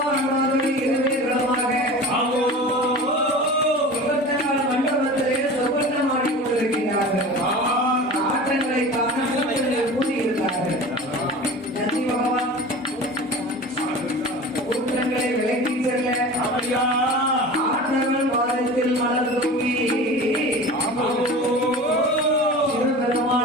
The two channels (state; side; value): normal; both; correlation 0.36